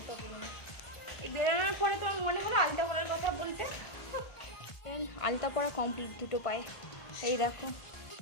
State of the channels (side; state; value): right; late; 1.5 ms